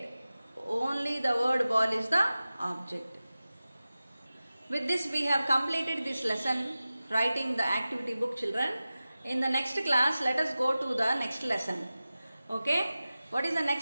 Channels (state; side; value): inverted; both; correlation -0.96